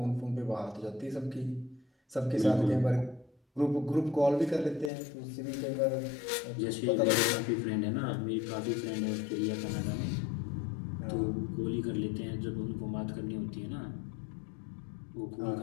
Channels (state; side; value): drops out; right; at 4.9 s